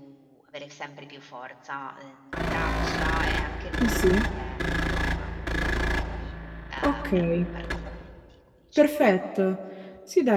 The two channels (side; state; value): both; identical; correlation 1.00